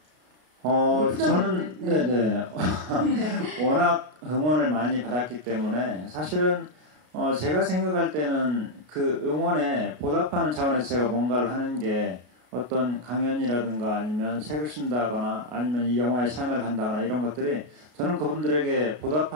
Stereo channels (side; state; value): left; late; 33 ms